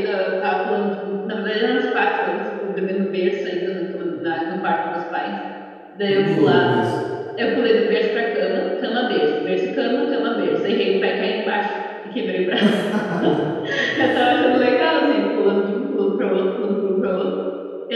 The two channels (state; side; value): identical; both; correlation 1.00